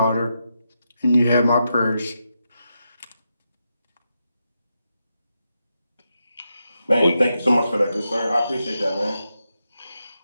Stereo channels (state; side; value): inverted; both; correlation -0.86